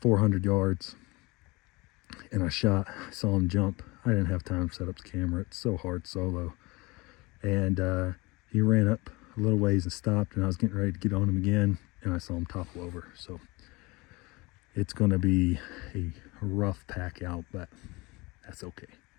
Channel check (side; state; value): right; quieter; 24.0 dB